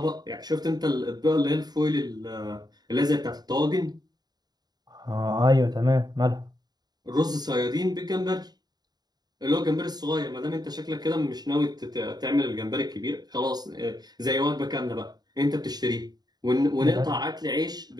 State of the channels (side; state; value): left; late; 0.20 ms